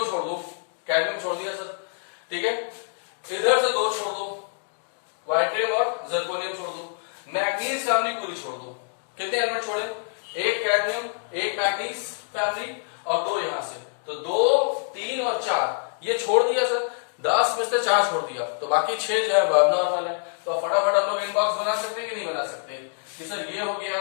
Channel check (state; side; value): silent; right; digital silence